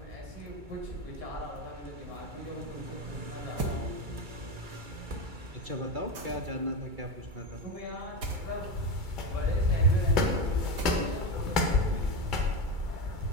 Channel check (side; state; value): left; late; 2.3 ms